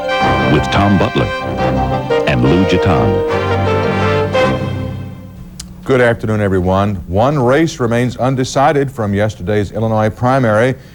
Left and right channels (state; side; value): identical; both; correlation 1.00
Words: with Tom Butler and Lou Gitan. Good afternoon, everyone. One race remains undecided from yesterday's Illinois primary.